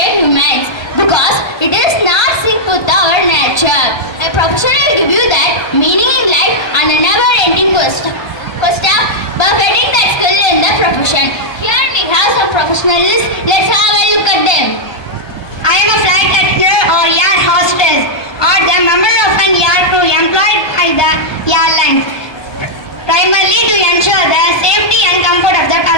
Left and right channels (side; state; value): right; late; 1.2 ms